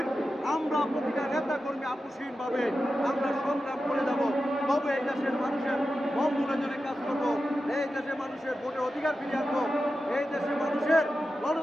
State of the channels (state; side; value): normal; both; correlation 0.91